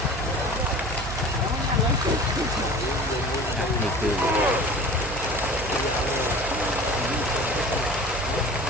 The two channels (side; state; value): right; noise; hum, 8 dB below the sound